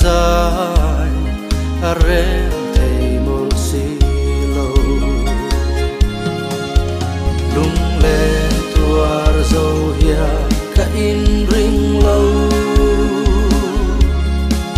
rem thầy một xì lâu lung lệ tuar dâu hia cả in ring lâu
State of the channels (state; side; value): identical; both; correlation 1.00